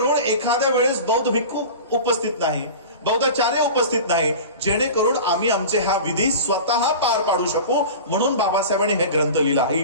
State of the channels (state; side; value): inverted; both; correlation -0.34